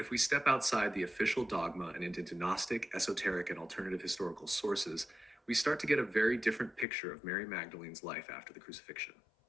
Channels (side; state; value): right; drops out; at 6.9 s